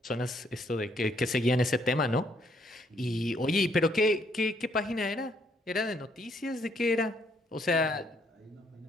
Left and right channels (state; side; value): normal; both; correlation 0.70